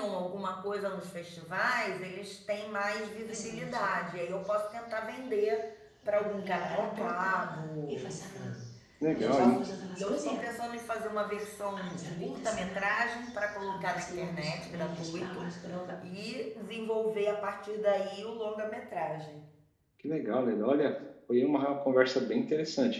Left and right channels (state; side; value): identical; both; correlation 1.00